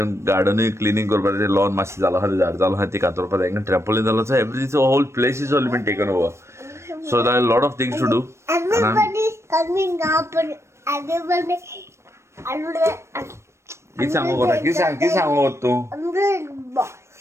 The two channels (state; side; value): late; left; 0.13 ms